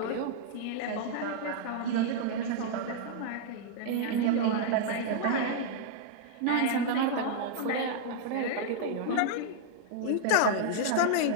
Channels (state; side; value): different; both; correlation -0.01